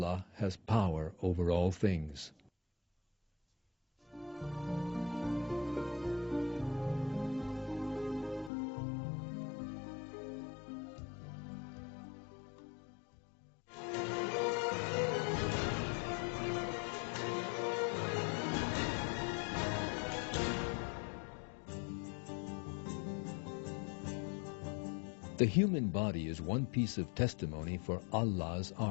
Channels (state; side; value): drops out; right; at 8.5 s